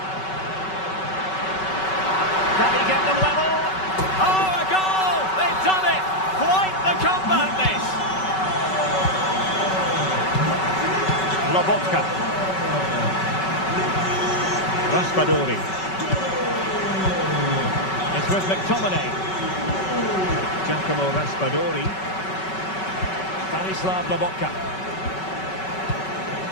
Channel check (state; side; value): late; right; 5.3 ms